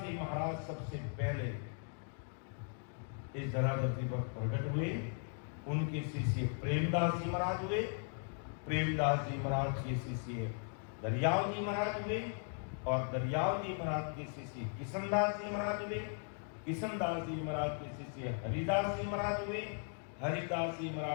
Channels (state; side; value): silent; right; 53 dB below the other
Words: महाराज सबसे पहले इस धराधरती पर प्रकट हुए। उनके शिष्य प्रेमदास जी महाराज हुए। प्रेमदास जी महाराज के शिष्य दरियाव जी महाराज हुए और दरियाव जी महाराज के शिष्य किशनदास जी महाराज हुए। किशनदास जी महाराज के शिष्य हरिदास जी महाराज हुए। हरिदास जी